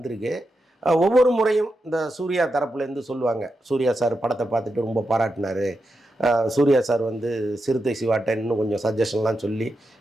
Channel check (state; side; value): normal; both; correlation 0.87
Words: ஒவ்வொரு முறையும் இந்த சூர்யா தரப்புலேருந்து சொல்லுவாங்க, சூர்யா சார் படத்தை பார்த்துட்டு ரொம்ப பாராட்டினார், சூர்யா சார் வந்து சிறுத்தை சிவாட்ட இன்னும் கொஞ்சம் சஜஷன்லாம் சொல்லி